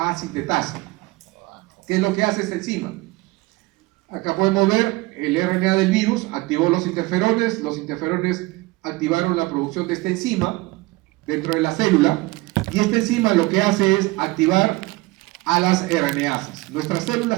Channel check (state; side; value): quieter; left; 21.6 dB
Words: ¿Qué es lo que hace esta enzima? Acá podemos ver el RNA del virus, activó los interferones activaron la producción de esta enzima dentro de la célula, y esta enzima lo que hace es activar a las RNasas. Nuestras